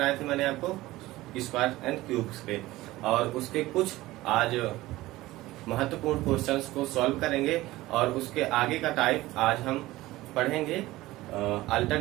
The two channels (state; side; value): quieter; left; 17.8 dB